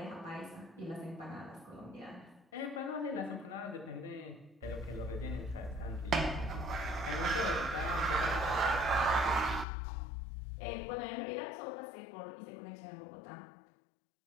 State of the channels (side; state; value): right; drops out; at 9.7 s